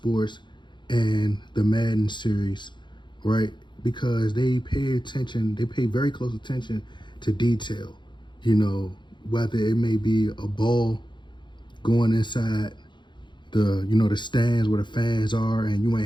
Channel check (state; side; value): late; right; 0.22 ms